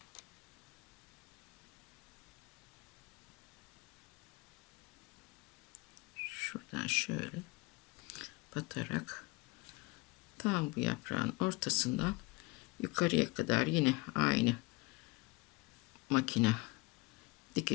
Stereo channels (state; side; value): quieter; right; 24.7 dB